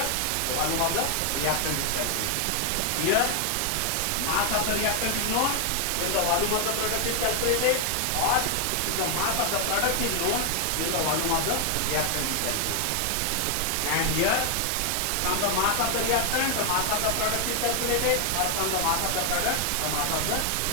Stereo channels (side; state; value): both; different; correlation 0.00